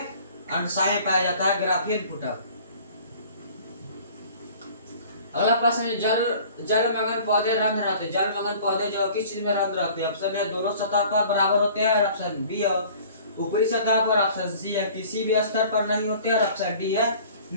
में पाया जाता है ग्राफियन पुटक। अगला प्रश्न है जलमग्न पौधे रंग रहते हैं। जलमग्न पौधे जो किस चीज में रंग रहते हैं? ऑप्शन है दोनों सतह पर बराबर होते हैं और ऑप्शन बी है ऊपरी सतह पर, ऑप्शन सी है किसी भी स्तर पर नहीं होते और ऑप्शन डी है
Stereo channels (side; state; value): both; inverted; correlation -0.49